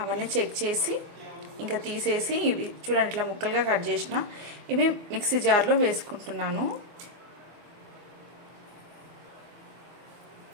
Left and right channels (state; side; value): late; left; 24 ms